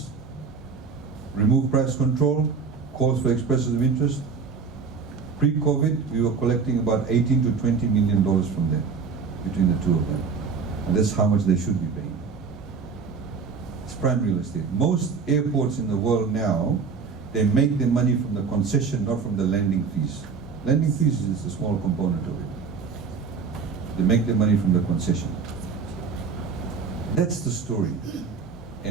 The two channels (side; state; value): left; quieter; 5.4 dB